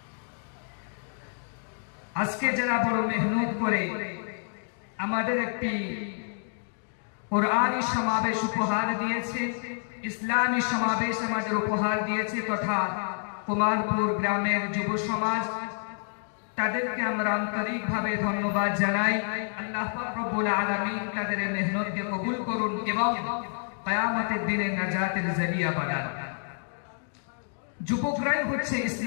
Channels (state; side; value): silent; right; digital silence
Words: আজকে যারা বড় মেহনত করে আমাদের একটি কোরআনী সমাবেশ উপহার দিয়েছে ইসলামী সমাবেশ আমাদের উপহার দিয়েছে তথা কুমারপুর গ্রামের যুব সমাজ তাদেরকে আমরা আন্তরিকভাবে ধন্যবাদ জানাই আল্লাহ পাক রব্বুল আলামিন তাদের মেহনতকে কবুল করুন এবং কিয়ামতের দিনে নাজাতের জরিয়া বানান যুবকরাই হচ্ছে